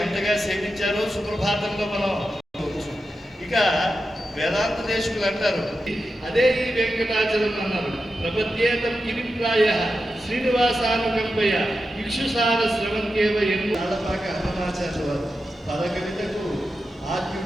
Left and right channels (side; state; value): both; normal; correlation 0.90